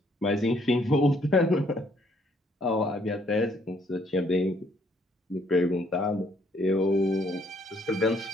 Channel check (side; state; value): both; normal; correlation 0.67